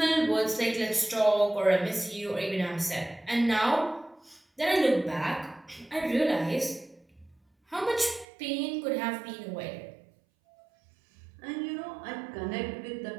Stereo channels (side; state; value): left; drops out; at 8.2 s